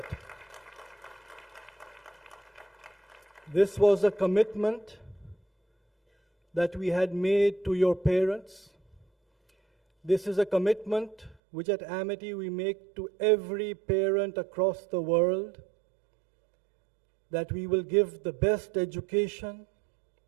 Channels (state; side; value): drops out; left; at 11.4 s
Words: This was a commitment that we had made to your parents. This is a commitment which at Amity we make to every parent across the world, that we will give the best education.